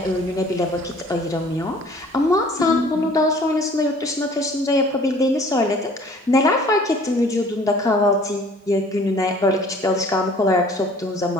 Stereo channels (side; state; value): both; normal; correlation 0.52